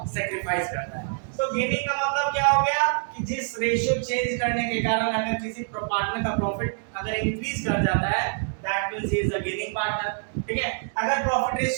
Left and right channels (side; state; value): left; silent; 61 dB below the other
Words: सैक्रिफाइस करता है। तो गेनिंग का मतलब क्या हो गया कि जिस रेशियो चेंज करने के कारण अगर किसी पार्टनर का प्रॉफिट अगर इंक्रीज कर जाता है that means he is a gaining partner, ठीक है। अगर प्रॉफिट